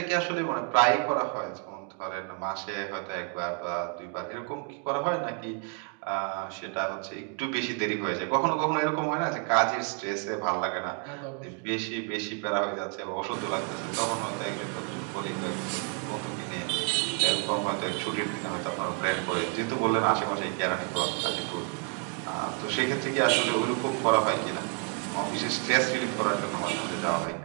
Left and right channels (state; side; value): quieter; left; 37.2 dB